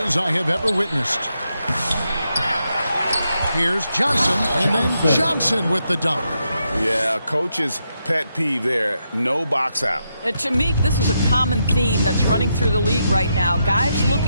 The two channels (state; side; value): inverted; both; correlation -0.82